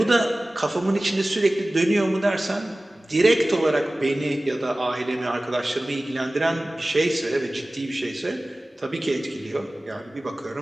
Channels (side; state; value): both; normal; correlation 0.97